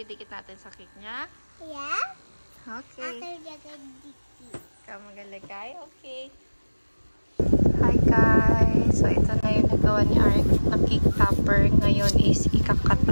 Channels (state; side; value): inverted; both; correlation -1.00